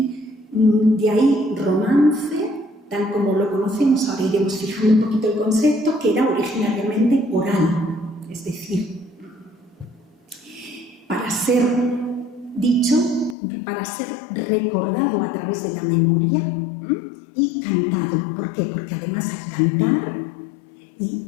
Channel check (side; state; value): right; drops out; at 13.4 s